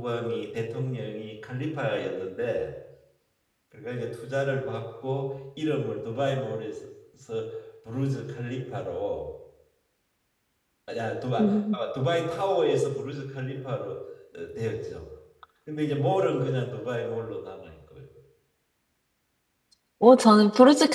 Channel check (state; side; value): identical; both; correlation 1.00